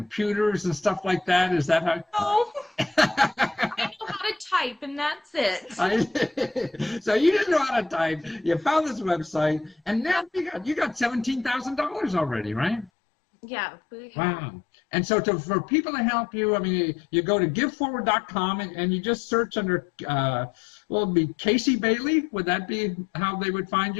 and stuff like that? Is that how? No. I know how to type, and that's it. So you didn't know how to type. You found this website, and now you got $17,000 already, right? Yeah. Wow. And so for people to help you, I mean, you go to giveforward.com and you just search under, it'd be Casey Bailey. Would that be how they would find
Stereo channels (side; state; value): right; drops out; at 12.9 s